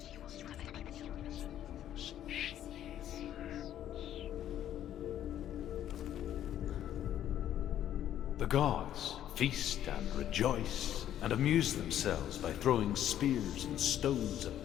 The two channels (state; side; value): quieter; right; 11.3 dB